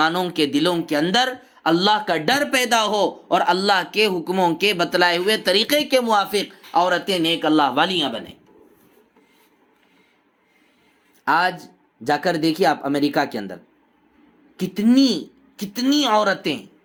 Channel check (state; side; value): identical; both; correlation 1.00